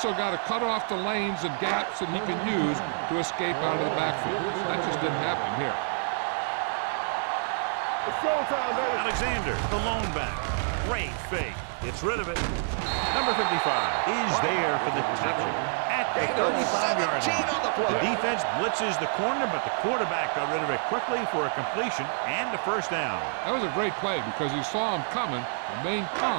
got to cut off the lanes and gaps that he can use to escape out of the backfield. That just didn't happen here. So we gonna take it. Come on. It's showtime, baby. Alexander, the lone back. Great fake. Gets rid of it. Number 55 is there for the tackle at the 35-yard line. The defense blitzes the corner, but the quarterback got rid of it quickly for a completion and a first down. That was a great play because he saw him coming, remained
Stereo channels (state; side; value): silent; left; digital silence